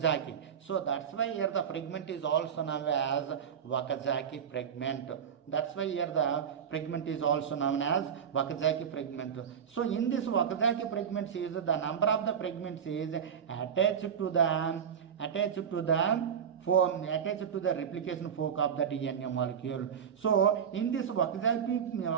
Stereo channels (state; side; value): quieter; left; 7.8 dB